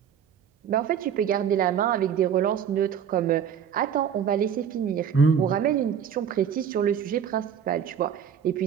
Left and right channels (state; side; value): quieter; left; 8.2 dB